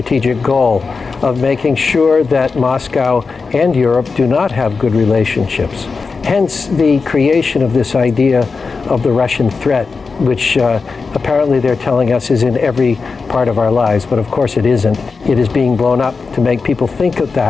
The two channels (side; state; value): right; quieter; 4.6 dB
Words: goal of making sure that Moscow and Europe do not have good relationships. Hence the creation of this idea of the Russian threat, which apparently they're telling us is in every part of our lives, but of course it isn't. It is being blown up to make people think of